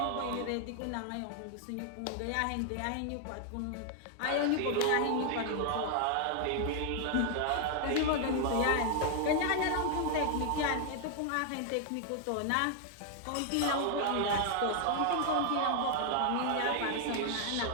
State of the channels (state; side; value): different; both; correlation 0.00